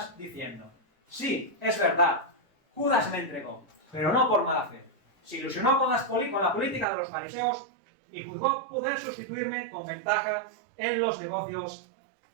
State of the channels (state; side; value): drops out; left; at 6.9 s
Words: diciendo: sí, es verdad, Judas me entregó, pero no por mala fe. Se ilusionó con la política de los fariseos y juzgó poder sustituirme con ventaja en los negocios